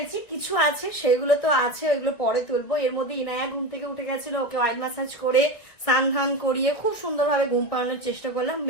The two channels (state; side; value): late; right; 1.9 ms